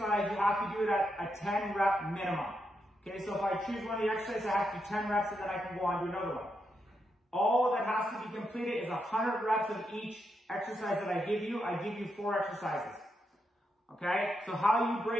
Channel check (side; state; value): both; normal; correlation 0.83